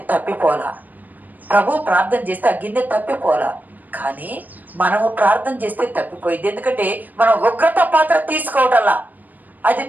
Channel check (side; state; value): left; late; 0.085 ms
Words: తప్పిపోలా, ప్రభువు ప్రార్థన చేస్తే ఆ గిన్నె తప్పిపోలా. కానీ మనము ప్రార్థన చేస్తే తప్పిపోయింది. ఎందుకంటే మనం ఉగ్రత పాత్ర తీసుకోవటల్లా అది